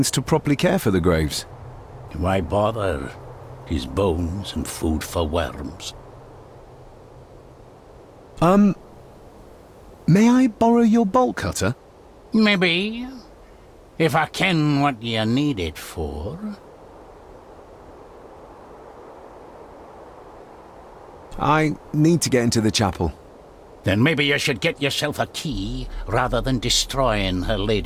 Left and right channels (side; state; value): both; identical; correlation 1.00